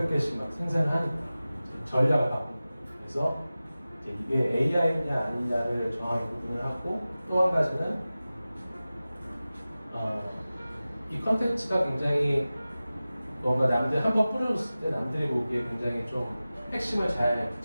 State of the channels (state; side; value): inverted; both; correlation -0.96